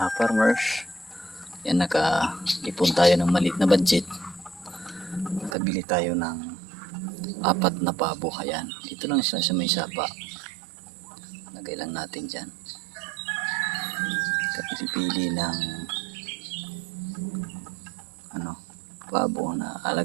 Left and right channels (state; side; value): drops out; left; at 5.6 s